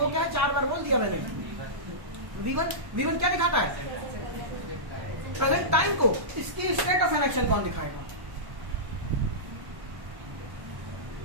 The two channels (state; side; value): late; left; 1.1 ms